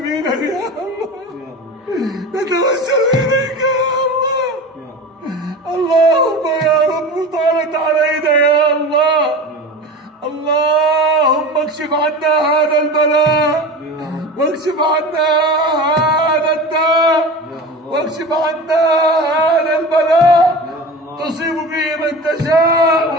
يا الله. نتوسل إليك يا الله. اللهم يا رب طالت علينا يا الله، اللهم اكشف عنا هذا البلاء، واكشف عنا هذا الداء، واكشف عنا هذا البلاء. تصيب به من تشاء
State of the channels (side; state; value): both; normal; correlation 0.32